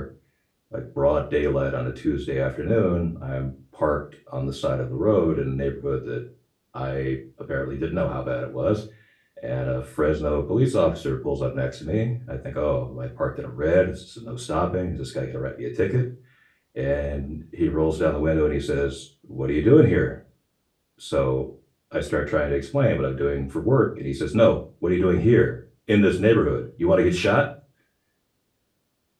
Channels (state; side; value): identical; both; correlation 1.00